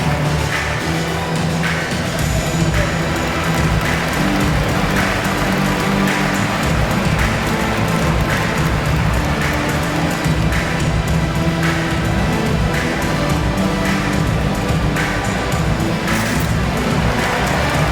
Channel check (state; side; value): identical; both; correlation 1.00